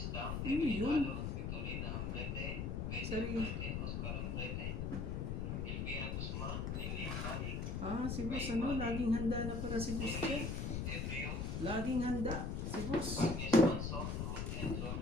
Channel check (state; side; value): noise; left; rumble, 2 dB below the sound